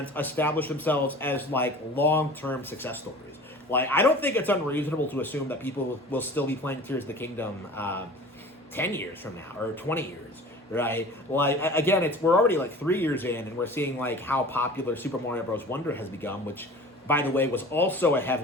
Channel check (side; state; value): both; normal; correlation 0.41